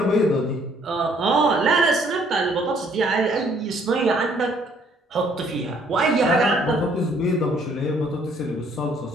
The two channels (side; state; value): both; normal; correlation 0.63